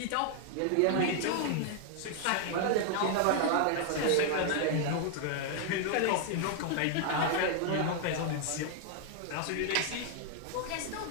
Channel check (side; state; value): both; different; correlation 0.00